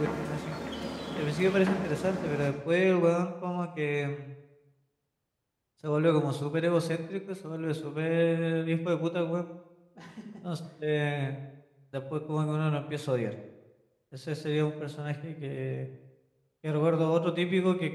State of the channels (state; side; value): identical; both; correlation 1.00